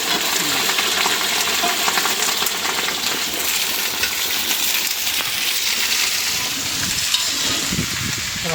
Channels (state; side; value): identical; both; correlation 1.00